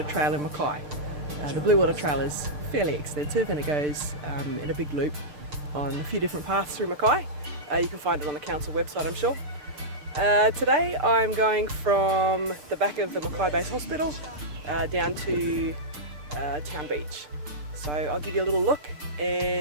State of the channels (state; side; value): late; left; 6.8 ms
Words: Trail in Mackay. The Bluewater Trail is fairly extensive and it goes in a big loop on a few different paths through Mackay. You can find it on the council website, I'm sure. Today I'm going from the back of the Mackay Base Hospital down to Town Beach. So I'll give you a little look